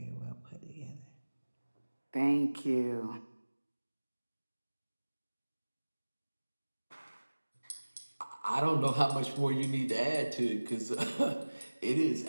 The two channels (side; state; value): both; inverted; correlation -1.00